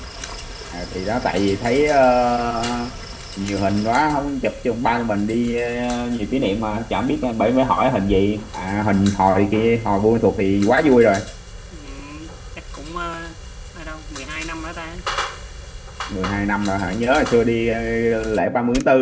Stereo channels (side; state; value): both; identical; correlation 1.00